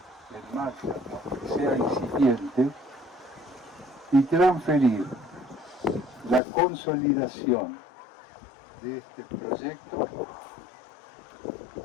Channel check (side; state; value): right; drops out; at 6.4 s